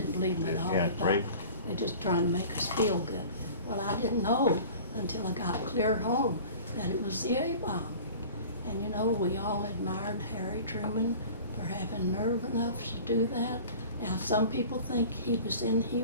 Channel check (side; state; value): both; inverted; correlation -0.42